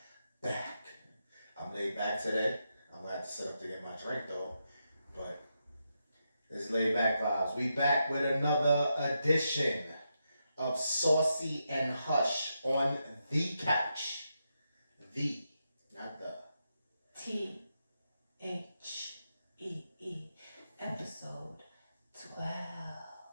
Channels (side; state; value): both; inverted; correlation -0.85